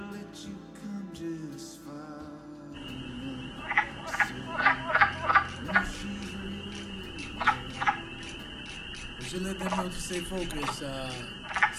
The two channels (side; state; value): both; identical; correlation 1.00